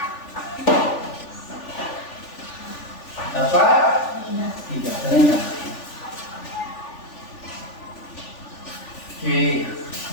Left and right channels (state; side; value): late; right; 3.4 ms